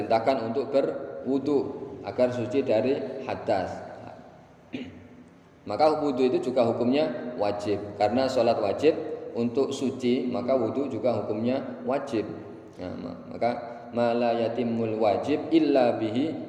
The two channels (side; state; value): both; identical; correlation 1.00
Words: untuk berwudu agar suci dari hadas. Maka wudu itu juga hukumnya wajib, karena sholat wajib untuk suci, maka wudu juga hukumnya wajib. Nah, maka ma la yatimul wajib illa